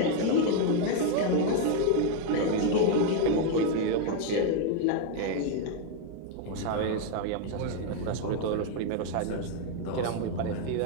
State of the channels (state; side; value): different; both; correlation 0.00